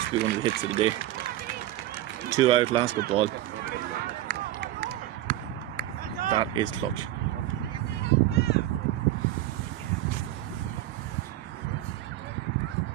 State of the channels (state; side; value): quieter; left; 14.2 dB